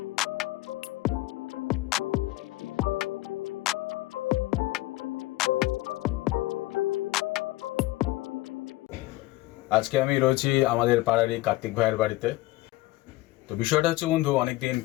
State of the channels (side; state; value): right; quieter; 18.3 dB